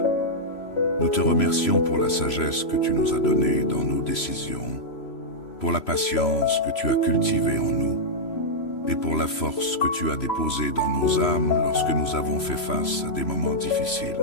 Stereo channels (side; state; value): right; late; 3.0 ms